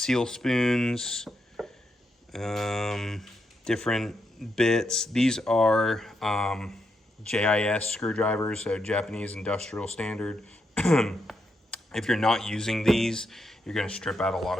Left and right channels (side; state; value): both; normal; correlation 0.82